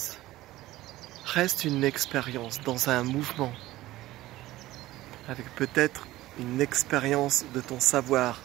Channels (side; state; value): left; quieter; 16.6 dB